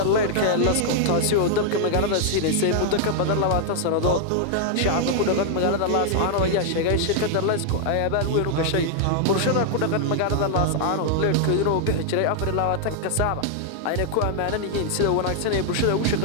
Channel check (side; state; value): both; different; correlation -0.01